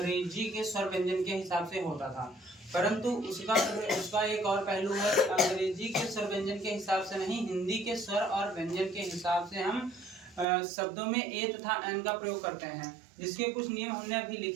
के स्वर व्यंजन के हिसाब से होता था। परंतु उसका एक और पहलू है कि अंग्रेजी के स्वर व्यंजन के हिसाब से नहीं, हिंदी के स्वर और व्यंजन के हिसाब से हम शब्दों में ए तथा एन का प्रयोग करते हैं, जिसके कुछ नियम हमने अभी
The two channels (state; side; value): drops out; left; at 10.5 s